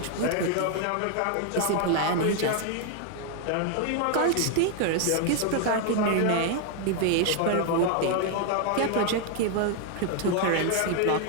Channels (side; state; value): both; different; correlation 0.00